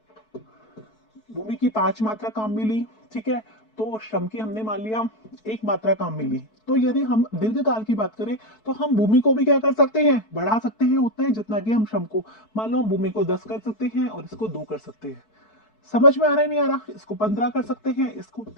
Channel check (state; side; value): late; right; 4.6 ms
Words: की 5 मात्रा काम मिली, ठीक है, तो श्रम की हमने मान लिया 1 मात्रा काम मिली। तो यदि हम दीर्घकाल की बात करें तो हम भूमि को भी क्या कर सकते हैं, बढ़ा सकते हैं उतना ही जितना कि हम श्रम को, मान लो हम भूमि को 10 कर सकते हैं और इसको 2 कर सकते हैं। समझ में आ रहा है, नहीं आ रहा, इसको 15 कर सकते हैं, इसको